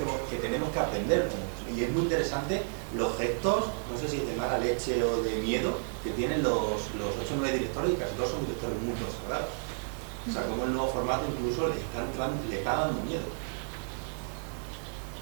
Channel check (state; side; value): silent; left; digital silence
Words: tenemos que aprender. Y es muy interesante los gestos, no sé si es de mala leche o de miedo, que tienen los 8 o 9 directores, y casi todos son directores muy consagrados. O sea, cómo el nuevo formato incluso le está dando miedo.